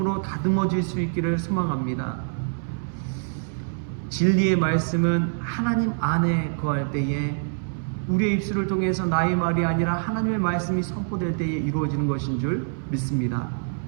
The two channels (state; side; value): silent; left; 62 dB below the other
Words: 다듬어질 수 있기를 소망합니다. 진리의 말씀은 하나님 안에 거할 때에 우리의 입술을 통해서 나의 말이 아니라 하나님의 말씀이 선포될 때에 이루어지는 것인 줄 믿습니다.